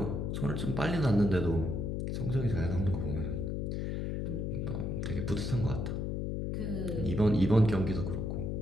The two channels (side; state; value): left; noise; hum, 1 dB below the sound